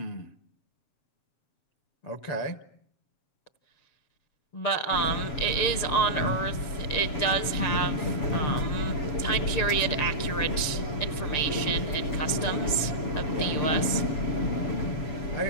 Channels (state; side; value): late; right; 6.8 ms